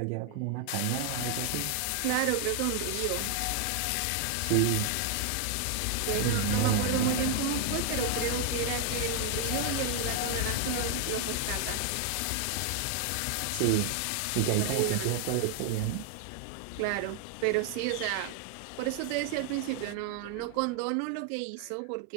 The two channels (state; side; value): different; both; correlation 0.00